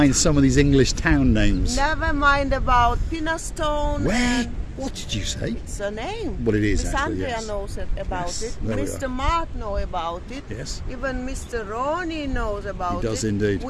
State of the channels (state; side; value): identical; both; correlation 1.00